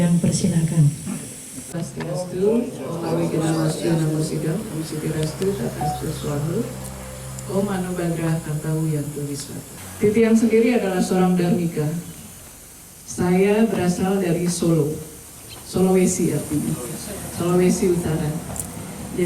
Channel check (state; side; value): identical; both; correlation 1.00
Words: persilakan. Swastiastu, Om Awigenawasya Namo Sidam, Om Sitirastu, Tatastu Swahu, Om Anubadrah Kartawu Yantu Wiswata. Titiang sendiri adalah seorang Dharmika. Saya berasal dari Solo, Sulawesi artinya, Sulawesi Utara.